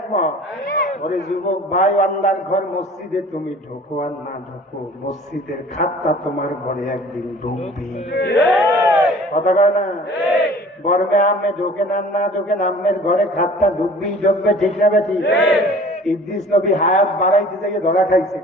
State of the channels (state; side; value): normal; both; correlation 0.48